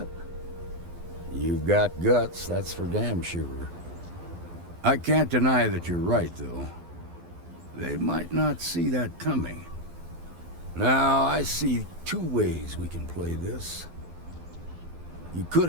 You've got guts, that's for damn sure. I can't deny that you're right, though. They might not see that coming. Now, I see two ways we can play this. You could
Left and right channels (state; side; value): late; left; 12 ms